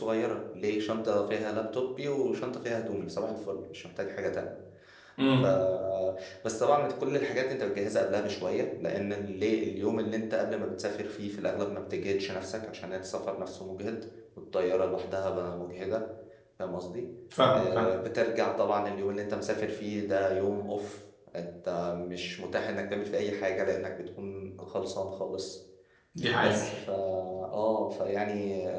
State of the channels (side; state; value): both; identical; correlation 1.00